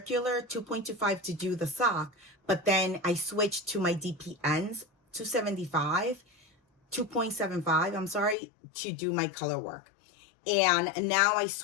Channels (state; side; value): drops out; right; at 8.3 s